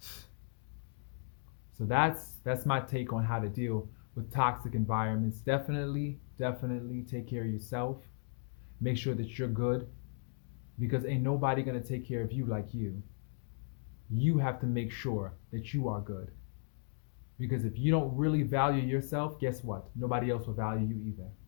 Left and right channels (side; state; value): right; silent; digital silence